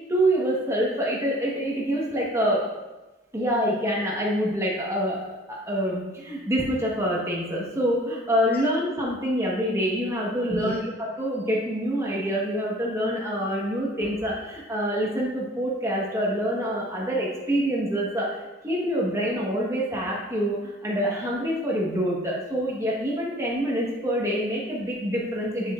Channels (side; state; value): both; normal; correlation 0.50